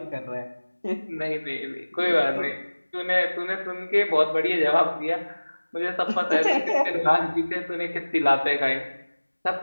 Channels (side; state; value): both; inverted; correlation -1.00